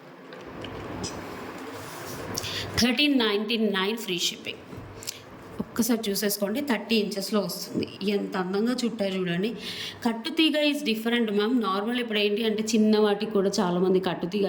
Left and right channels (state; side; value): identical; both; correlation 1.00